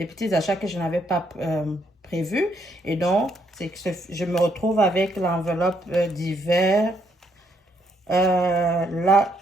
petits achats que je n'avais pas prévus. Et donc, c'est que je me retrouve avec l'enveloppe d'hiver. Là,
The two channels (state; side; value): normal; both; correlation 0.73